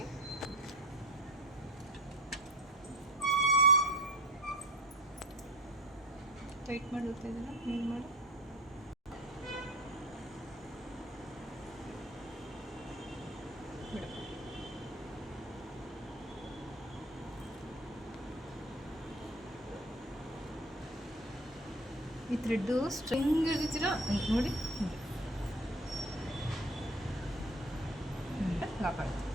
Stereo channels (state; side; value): normal; both; correlation 0.38